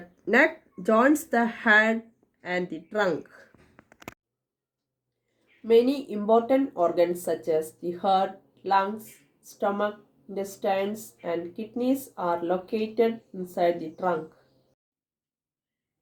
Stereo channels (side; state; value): both; identical; correlation 1.00